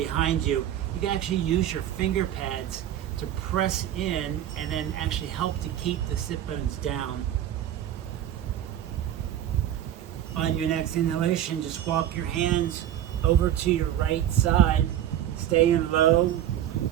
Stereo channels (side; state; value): left; quieter; 11.5 dB